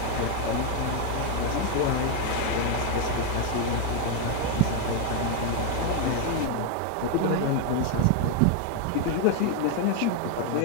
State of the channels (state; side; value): different; both; correlation 0.01